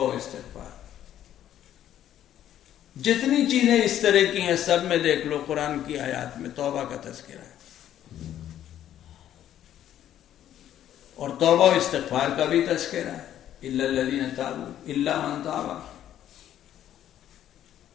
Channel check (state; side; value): quieter; right; 11.3 dB